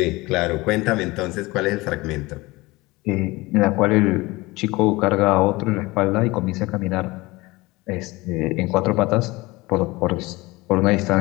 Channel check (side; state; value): right; quieter; 21.7 dB